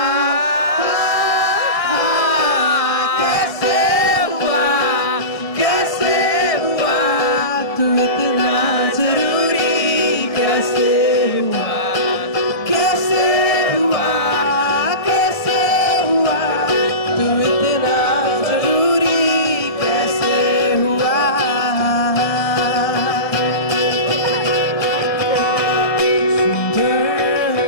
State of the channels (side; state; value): right; late; 1.7 ms